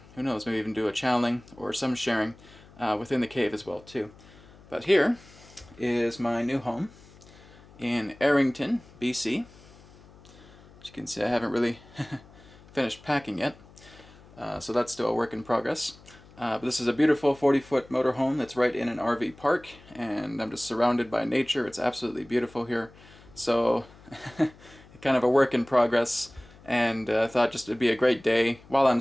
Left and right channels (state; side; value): noise; left; hum, 23 dB below the sound